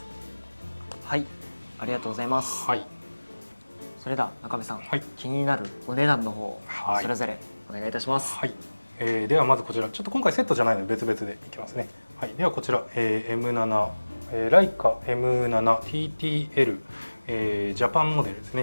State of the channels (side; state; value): both; inverted; correlation -1.00